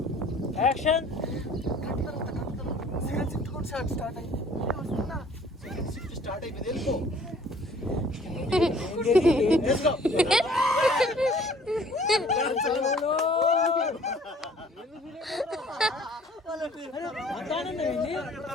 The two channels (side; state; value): both; normal; correlation 0.54